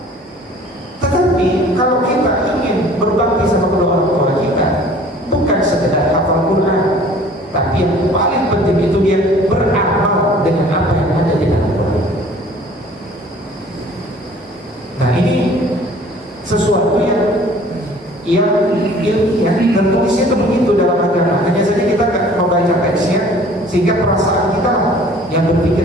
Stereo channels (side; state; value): both; normal; correlation 0.51